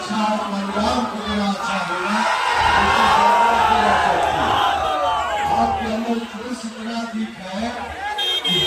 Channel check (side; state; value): both; identical; correlation 1.00